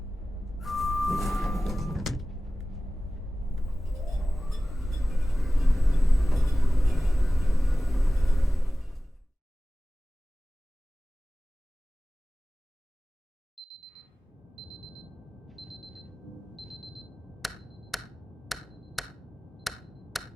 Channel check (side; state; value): both; normal; correlation 0.96